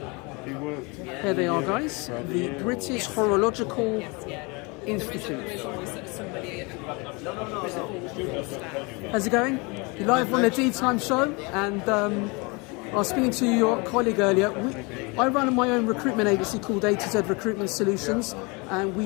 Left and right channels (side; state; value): right; quieter; 28.6 dB